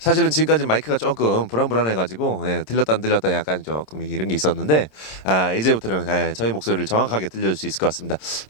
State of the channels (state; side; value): late; right; 26 ms